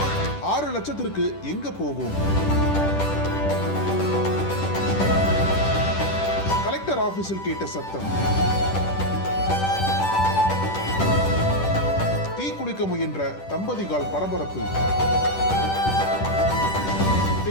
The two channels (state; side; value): late; right; 10 ms